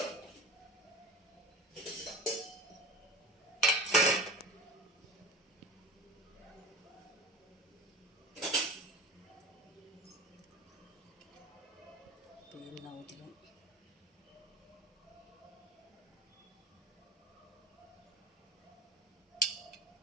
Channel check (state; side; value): normal; both; correlation 0.34